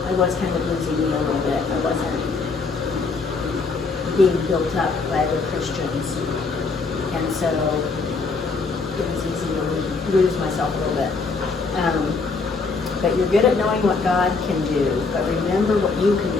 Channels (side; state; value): right; quieter; 4.3 dB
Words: I was kind of losing me a little bit. I wasn't being built up by other Christians. And so it was easy to lose myself a little bit. But you're good at knowing what God can do, but remember what you can